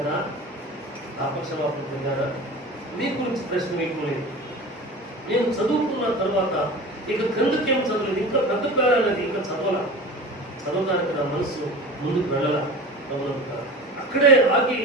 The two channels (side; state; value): both; normal; correlation 0.34